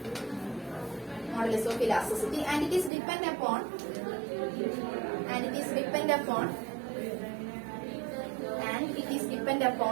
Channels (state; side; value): drops out; left; at 2.9 s